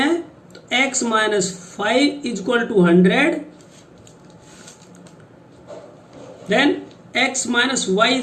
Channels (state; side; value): identical; both; correlation 1.00